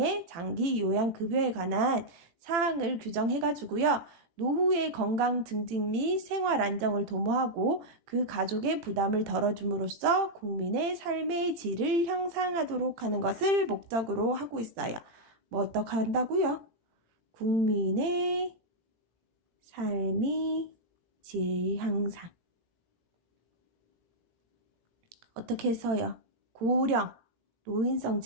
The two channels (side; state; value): left; late; 18 ms